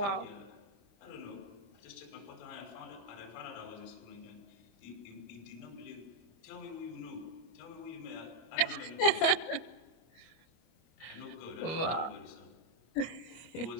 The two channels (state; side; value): late; right; 25 ms